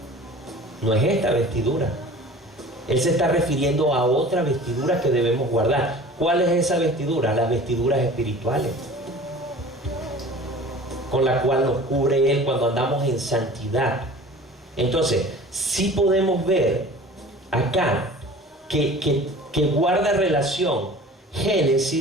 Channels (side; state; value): both; normal; correlation 0.43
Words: No es esta vestidura. Él se está refiriendo a otra vestidura que debemos guardar. ¿Cuál es esa vestidura? Las vestiduras espirituales, con la cual nos cubre Él cuando andamos en santidad. Entonces, sí podemos ver acá que guarda relación